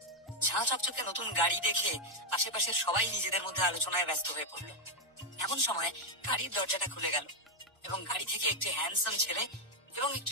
ঝাঁ চকচকে নতুন গাড়ি দেখে আশেপাশের সবাই নিজেদের মধ্যে আলোচনায় ব্যস্ত হয়ে পড়লো। এমন সময় গাড়ির দরজাটা খুলে গেল এবং গাড়ি থেকে একটি হ্যান্ডসাম ছেলে এবং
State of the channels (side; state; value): both; normal; correlation 0.02